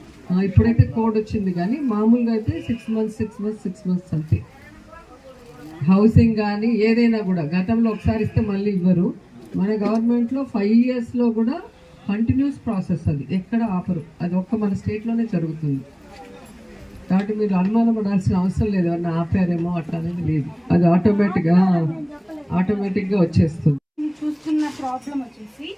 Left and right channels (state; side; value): identical; both; correlation 1.00